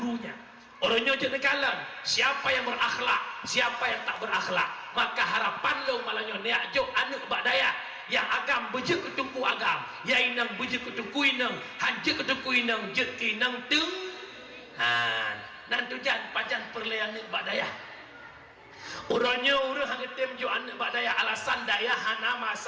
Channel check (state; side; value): identical; both; correlation 1.00